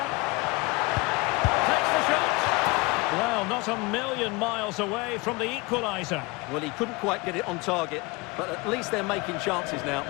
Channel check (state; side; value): quieter; right; 25.4 dB